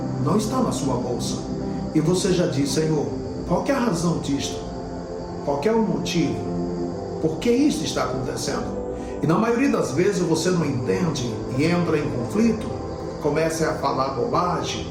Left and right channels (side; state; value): both; identical; correlation 1.00